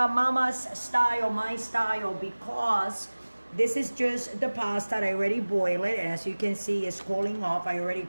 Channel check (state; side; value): inverted; both; correlation -1.00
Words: style, my style, because this is just the pasta. I already boiled it, and as you can see, it's cooling off. I already